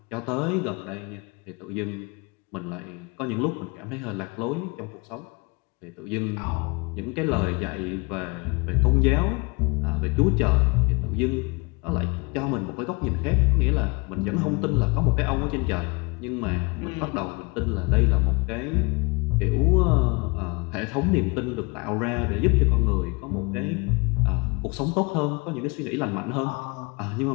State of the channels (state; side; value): quieter; right; 28.6 dB